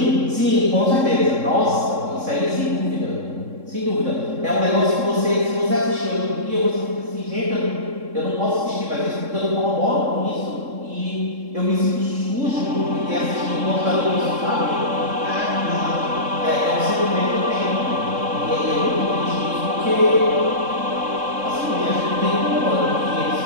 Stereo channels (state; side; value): late; left; 3.7 ms